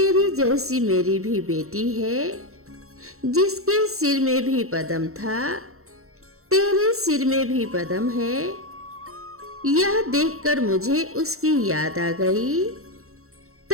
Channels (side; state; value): left; late; 0.63 ms